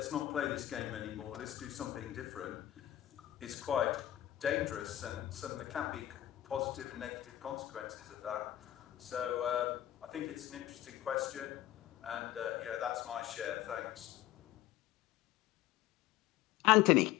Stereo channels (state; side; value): quieter; right; 13.6 dB